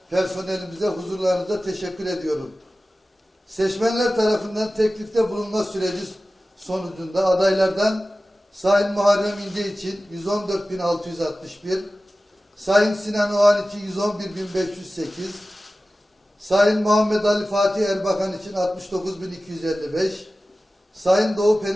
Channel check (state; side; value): normal; both; correlation 0.96